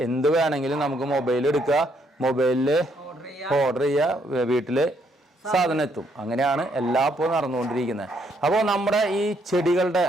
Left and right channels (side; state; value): both; normal; correlation 0.71